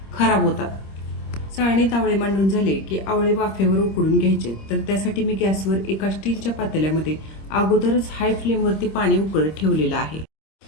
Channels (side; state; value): right; late; 26 ms